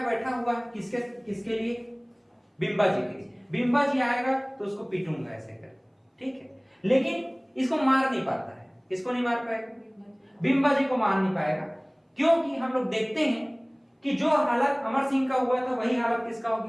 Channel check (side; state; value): both; identical; correlation 1.00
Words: बैठा हुआ है, किसके लिए? बिंबा जी के लिए। बिंबा जी आएगा तो उसको पीटूंगा ऐसे कर, ठीक है। लेकिन इसको मार नहीं पाता है। किसको नहीं मार पाएगा? बिंबा जी को मार नहीं पाएगा, क्योंकि हम लोग देखते हैं कि जो हालत अमर सिंह का हुआ था वही हालत किसका हो